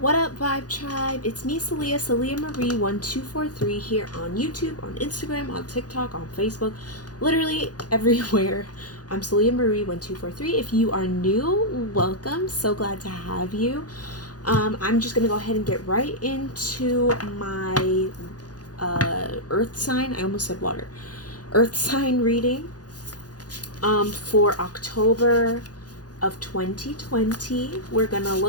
What up, Vibe Tribe? It's me, Celia Marie 1243 here on YouTube, on Instagram, on TikTok, on Facebook, literally everywhere. I'm Celia Marie 1243. If you are new, welcome. So glad to have you. I'm just gonna go ahead and get right into my Earth sign. I almost said water. Earth sign reading for October of 2020. We're gonna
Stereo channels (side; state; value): right; late; 0.68 ms